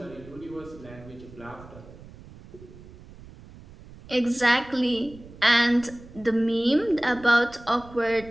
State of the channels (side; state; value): right; noise; rumble, 19 dB below the sound